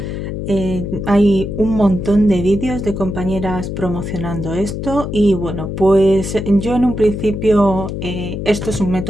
Hay un montón de vídeos de compañeras promocionando esto y bueno, pues yo en un principio esto es un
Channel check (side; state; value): left; noise; hum, 5 dB below the sound